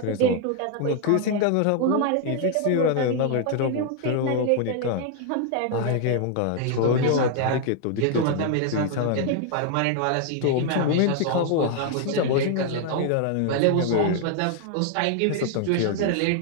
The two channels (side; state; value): both; different; correlation 0.00